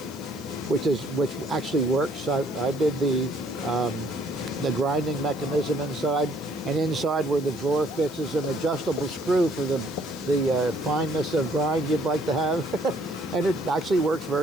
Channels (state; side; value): noise; left; hiss, 20 dB below the sound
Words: which actually works. I did the grinding mechanism inside, and inside where the drawer fits is an adjustable screw for the fineness of grind you'd like to have, and it actually works